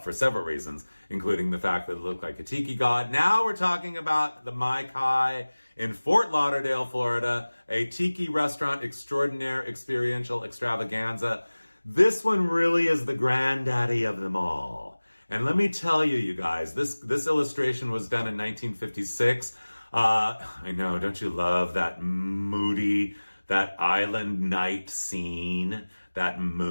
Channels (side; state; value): both; inverted; correlation -1.00